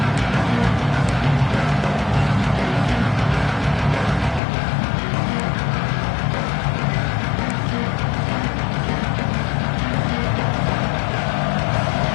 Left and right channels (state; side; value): drops out; right; at 4.4 s